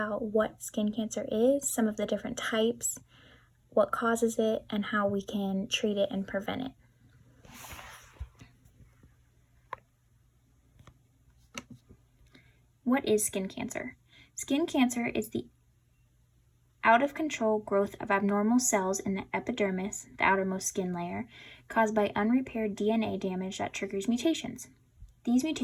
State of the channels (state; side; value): identical; both; correlation 1.00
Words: what skin cancer is, some of the different types, what causes it, and how we can treat it and prevent it. What is skin cancer? Skin cancer is the out-of-control growth of abnormal cells in the epidermis, the outermost skin layer, caused by unrepaired DNA damage that triggers mutations. These